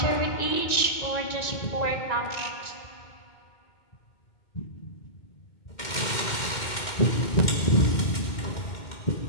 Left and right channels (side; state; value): right; late; 2.1 ms